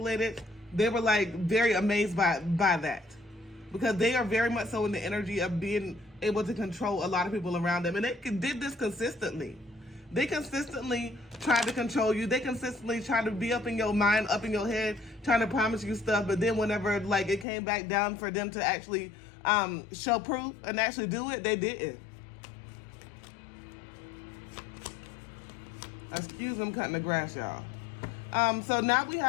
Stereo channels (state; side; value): drops out; right; at 17.4 s